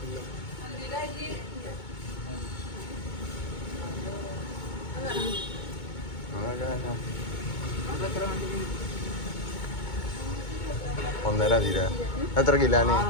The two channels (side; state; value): right; late; 2.2 ms